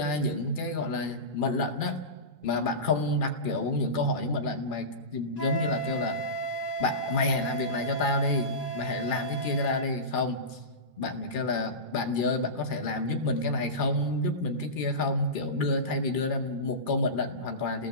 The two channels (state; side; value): late; left; 2.4 ms